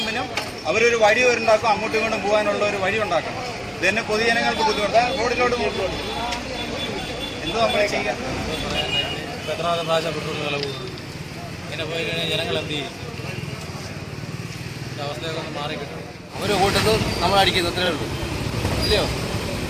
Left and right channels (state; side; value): identical; both; correlation 1.00